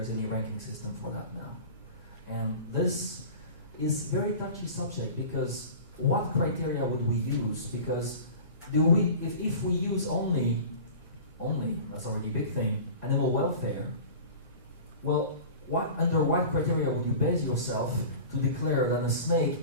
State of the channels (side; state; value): both; inverted; correlation -0.37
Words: any ranking system for that now. And this is very touchy subject because what criteria would we use? Because if we use only, that's already a big thing, animal welfare, well, under what criteria would you base yourself to declare that a